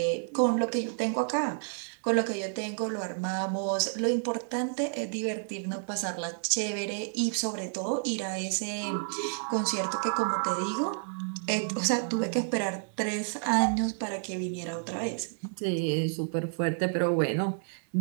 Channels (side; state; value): left; silent; 58 dB below the other